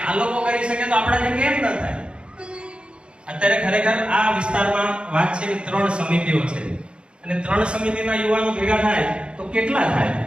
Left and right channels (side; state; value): left; late; 0.056 ms